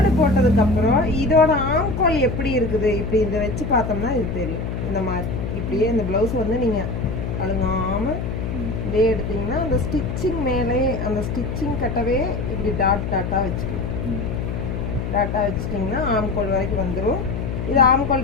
போட்டதுக்கப்புறம் இதோட ஆம்கோல் எப்படி இருக்குது இப்படி இதை வச்சு பார்த்தோம்னா இது தெரியும். இந்த மாதிரி இப்படியே இந்த ப்ளவுஸ் வந்து நீங்கள் அழுங்காமல் இதே எடுத்தீங்கன்னா அந்த ஸ்டிச்சிங் மேலே அந்த ஸ்டிச்சிங் கட்டவே இப்படி டாட்டாக வச்சுக்கலாம். டாட்டாக வச்சுட்டிங்கன்னா ஆம்கோல் வரைக்கும் வந்துடும். இது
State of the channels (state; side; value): noise; left; hum, 4 dB below the sound